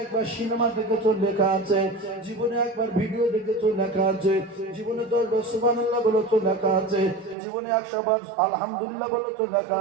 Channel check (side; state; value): left; drops out; at 7.4 s